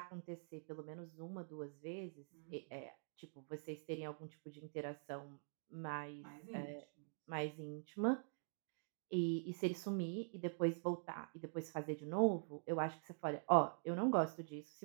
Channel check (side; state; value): left; silent; digital silence